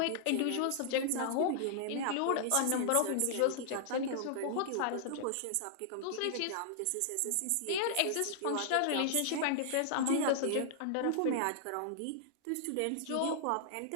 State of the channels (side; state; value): both; different; correlation -0.01